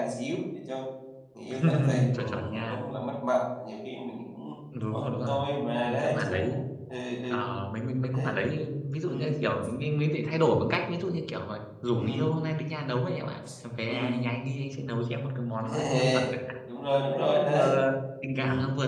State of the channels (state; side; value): identical; both; correlation 1.00